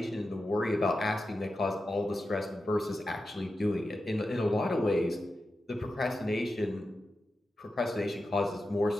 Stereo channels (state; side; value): normal; both; correlation 0.91